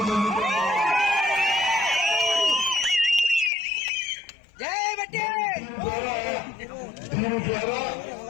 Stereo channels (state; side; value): drops out; right; at 3.5 s